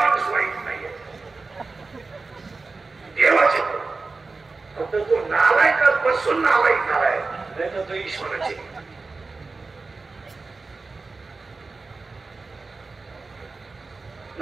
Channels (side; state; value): left; quieter; 3.9 dB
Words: वाईट नाहीये देवाचे फक्त तो नालायकात बसून नालायक झालाय नाही तर तो ईश्वराचे